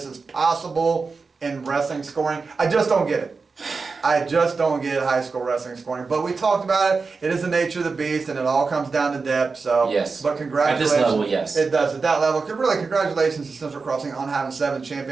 is possible in wrestling scoring. I just don't get it. I just don't get high school wrestling scoring. But we talked about it. It is the nature of the beast, and it all comes down to depth. So, yes. But congratulations. At this level, yes. It does. At that level, really, congratulations to Central Crossing on having 7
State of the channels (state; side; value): quieter; left; 4.5 dB